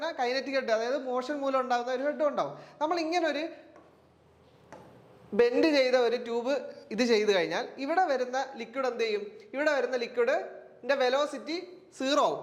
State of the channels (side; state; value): both; identical; correlation 1.00